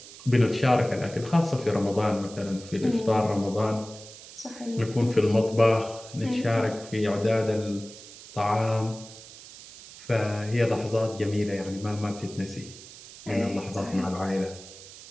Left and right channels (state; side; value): noise; right; hiss, 17 dB below the sound